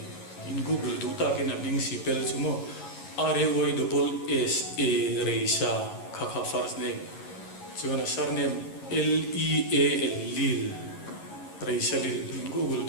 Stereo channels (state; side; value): late; right; 11 ms